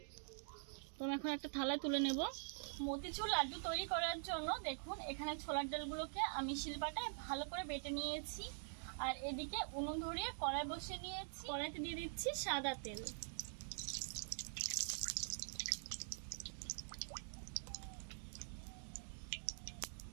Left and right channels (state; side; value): silent; left; digital silence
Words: তো আমি এখন একটা থালায় তুলে নেব। মতিচুর লাড্ডু তৈরি করার জন্য দেখুন এখানে ছোলার ডালগুলোকে আমি শিলপাটায় ভালো করে বেটে নিয়েছি। আর এদিকে উনুন ধরিয়ে কড়াই বসিয়ে নিয়েছি। কড়াইতে দিয়ে দিচ্ছি সাদা তেল।